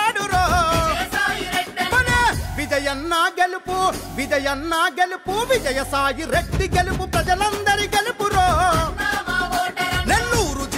విజయన్న గెలుపు విజయన్న గెలుపు విజయసాయి రెడ్డి గెలుపు ప్రజలందరి గెలుపురో నెల్లూరు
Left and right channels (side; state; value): both; identical; correlation 1.00